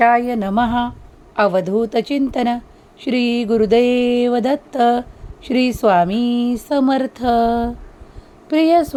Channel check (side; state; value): both; identical; correlation 1.00